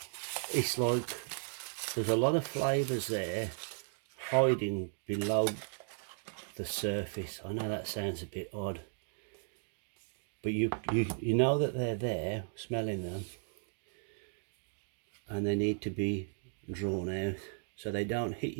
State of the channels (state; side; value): silent; left; digital silence